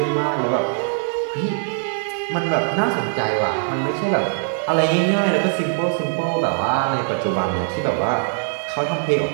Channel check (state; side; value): silent; left; 61 dB below the other